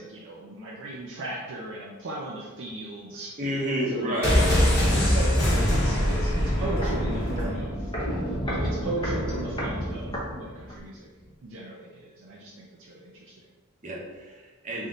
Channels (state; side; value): normal; both; correlation 0.69